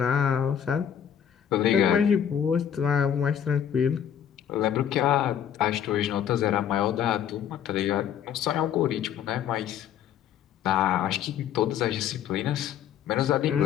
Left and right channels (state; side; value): quieter; right; 9.2 dB